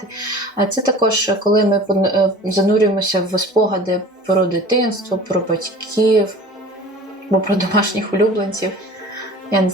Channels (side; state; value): both; normal; correlation 0.42